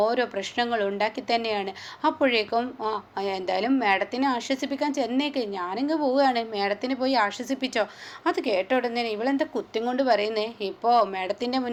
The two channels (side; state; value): both; identical; correlation 1.00